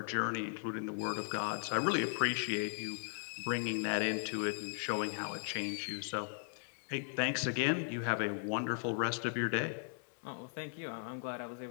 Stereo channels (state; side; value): silent; right; digital silence